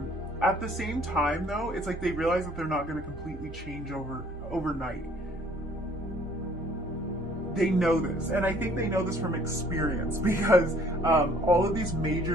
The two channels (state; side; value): normal; both; correlation 0.58